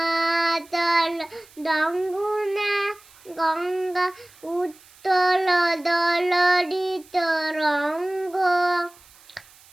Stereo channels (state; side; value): noise; right; hiss, 26 dB below the sound